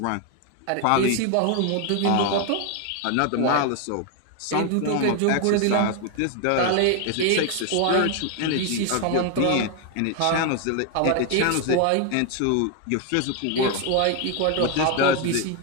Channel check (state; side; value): different; both; correlation 0.01